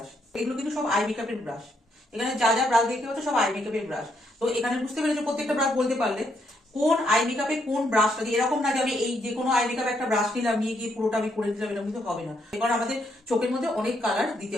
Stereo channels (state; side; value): normal; both; correlation 0.75